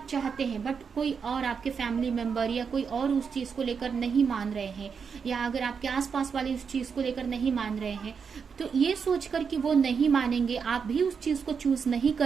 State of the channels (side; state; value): left; quieter; 6.1 dB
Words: चाहते हैं बट कोई और आपके फैमिली मेंबर या कोई और उस चीज को लेकर नहीं मान रहे हैं, या अगर आपके आसपास वाले उस चीज को लेकर नहीं मान रहे हैं, तो ये सोचकर कि वो नहीं मानेंगे, आप भी उस चीज को चूज नहीं